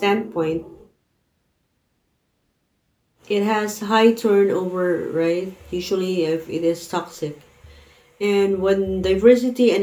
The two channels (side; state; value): both; identical; correlation 1.00